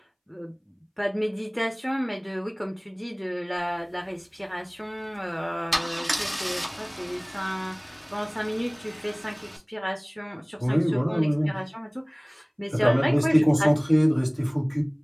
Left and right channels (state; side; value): identical; both; correlation 1.00